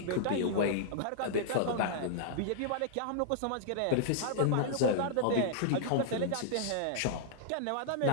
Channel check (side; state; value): both; different; correlation -0.01